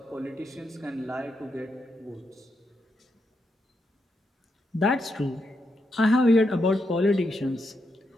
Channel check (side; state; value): both; normal; correlation 0.83